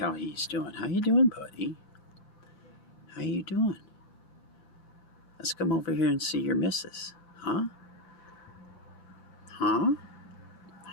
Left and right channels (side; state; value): right; late; 9.9 ms